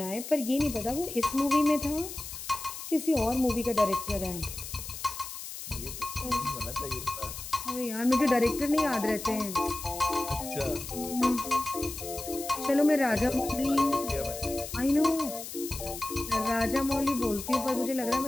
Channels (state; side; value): noise; left; hiss, 9 dB below the sound